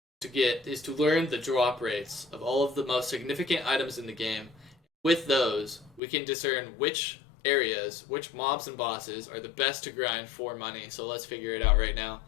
is to learn the drop rates of all of the most significant items in the game. With those, we can discern which areas, which mobs and bosses are the best to grind for money. So let's figure it out right now.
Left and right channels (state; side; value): drops out; right; at 6.0 s